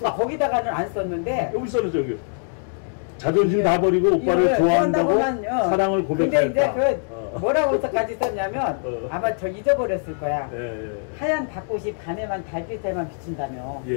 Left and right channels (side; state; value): right; silent; digital silence